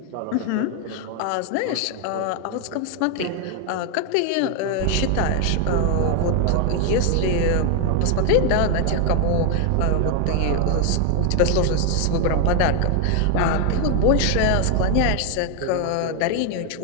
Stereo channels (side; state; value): both; different; correlation 0.00